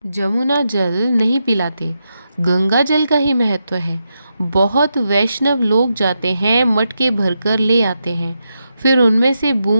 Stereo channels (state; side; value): inverted; both; correlation -0.86